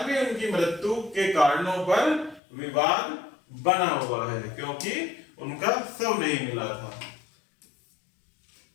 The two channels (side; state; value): right; drops out; at 2.4 s